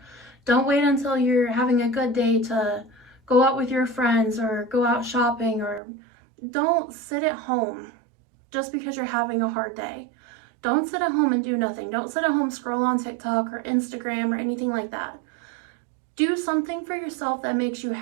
Don't wait until you're having a good day to go out with your friends or go out shopping, or don't sit at home just because you're having a hard day. Don't sit at home and do nothing. Don't sit at home, scroll on TikTok or Instagram or anything like that. Do something for yourself that makes you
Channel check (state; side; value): drops out; left; at 5.8 s